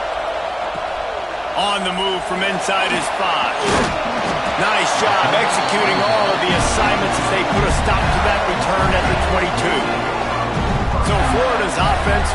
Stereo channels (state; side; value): identical; both; correlation 1.00